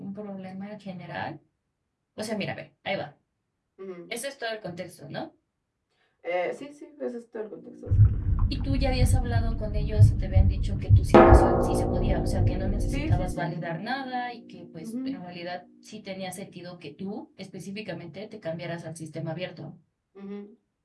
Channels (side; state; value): both; identical; correlation 1.00